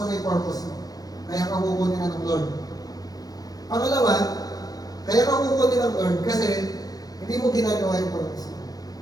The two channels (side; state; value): right; late; 0.18 ms